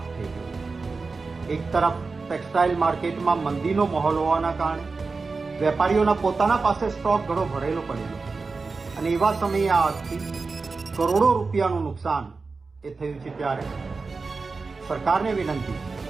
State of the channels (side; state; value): left; quieter; 4.2 dB